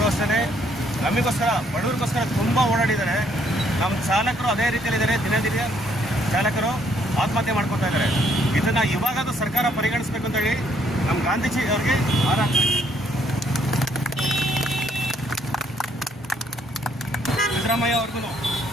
ಅಷ್ಟೇ ನಮಗೋಸ್ಕರ ಬಡವರಿಗೋಸ್ಕರ ತುಂಬ ಓಡಾಡಿದ್ದಾರೆ. ನಮ್ಮ ಚಾಲಕರು ಅದೇ ರೀತಿಯಲ್ಲಿದ್ದಾರೆ. ದಿನ ಚಾಲಕರು ಆತ್ಮಹತ್ಯೆ ಮಾಡ್ಕೊತಾ ಇದ್ದಾರೆ. ಇದನ್ನು ಇವಾಗಾದ್ರೂ ಸರ್ಕಾರ ಪರಿಗಣಿಸಬೇಕು ಅಂತೇಳಿ ನಮ್ಮ ಗಾಂಧೀಜಿ ಅವರಿಗೆ ಸಿದ್ದರಾಮಯ್ಯ ಅವ್ರಿಗೂ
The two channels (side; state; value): both; normal; correlation 0.68